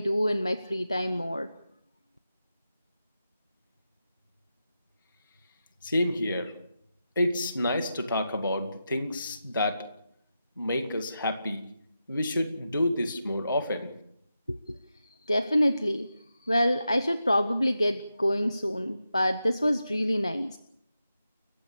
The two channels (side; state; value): both; inverted; correlation -0.89